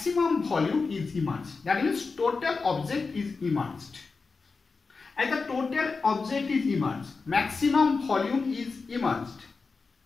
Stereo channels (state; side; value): quieter; right; 4.4 dB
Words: volume is immersed. That means total object is immersed. As the total object is immersed, maximum volume is immersed.